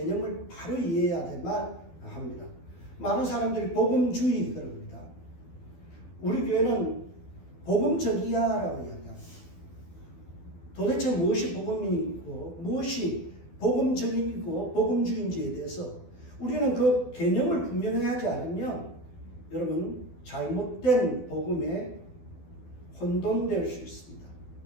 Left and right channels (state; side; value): late; right; 12 ms